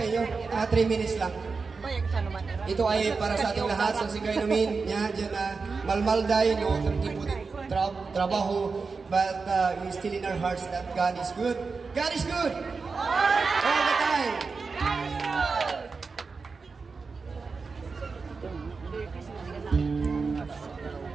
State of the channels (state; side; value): quieter; left; 4.6 dB